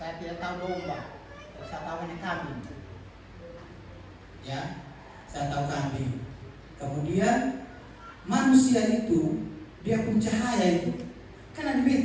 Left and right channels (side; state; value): both; identical; correlation 1.00